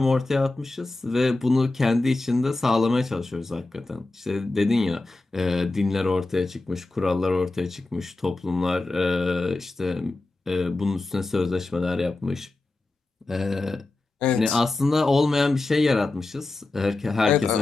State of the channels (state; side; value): quieter; right; 3.1 dB